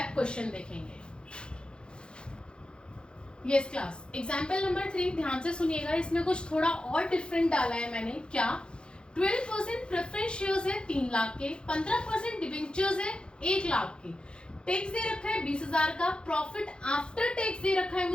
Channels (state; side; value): late; right; 0.052 ms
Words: क्वेश्चन देखेंगे। यस क्लास, एग्जांपल नंबर 3 ध्यान से सुनिएगा, इसमें कुछ थोड़ा और डिफरेंट डाला है मैंने। क्या? 12% प्रेफरेंस शेयर्स है 3 लाख के, 15% डिबेंचर्स है 1 लाख के, टैक्स दे रखा है 20,000 का, प्रॉफिट आफ्टर टैक्स दे रखा है